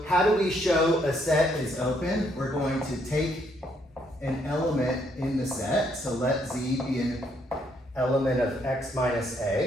how do we show a set is open? We're going to take an element in the set, so let Z be an element of X minus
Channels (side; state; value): both; normal; correlation 0.71